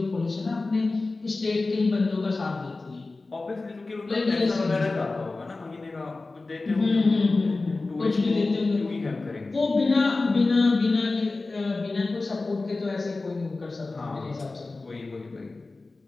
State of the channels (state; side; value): quieter; right; 3.5 dB